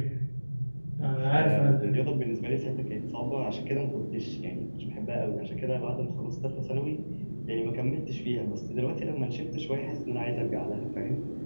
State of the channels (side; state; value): both; inverted; correlation -1.00